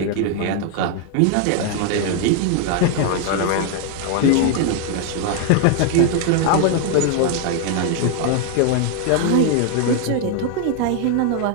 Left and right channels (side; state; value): both; different; correlation 0.00